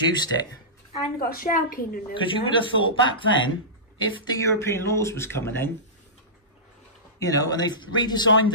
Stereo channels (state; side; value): normal; both; correlation -0.20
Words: it? And got a shell keen in there. Because you would have thought back then, if the European laws was coming in, you know, and they've redesigned